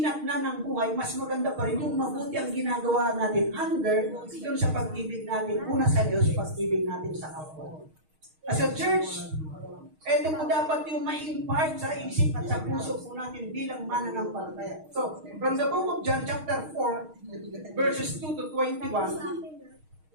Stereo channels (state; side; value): late; left; 6.4 ms